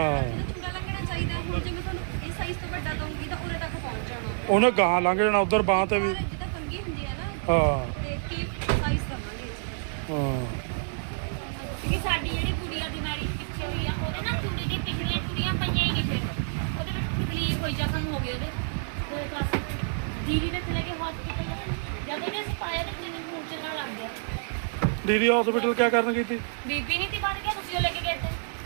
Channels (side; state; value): left; silent; 59 dB below the other